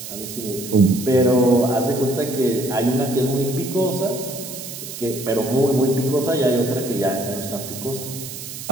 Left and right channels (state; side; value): noise; right; hiss, 10 dB below the sound